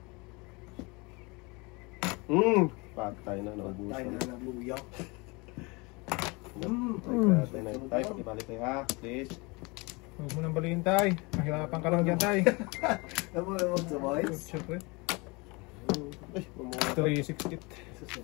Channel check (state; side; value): quieter; right; 27.2 dB